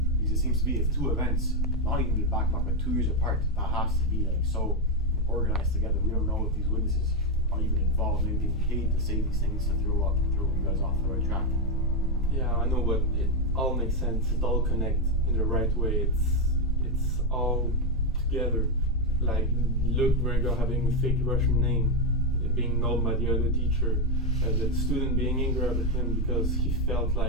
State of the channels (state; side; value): normal; both; correlation 0.06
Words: because it seems to be if two events, not even back to back, but 2 years apart, that has to be like so organized together. We don't know if these witnesses are even involved, maybe being paid to say these things to throw you guys off the right track. Yeah, I know, but it all makes sense. It all connects in the right way. It's all together. Like Luc Gringa having a fake Russian name, being known by the other teacher, the student being angry at him because he felt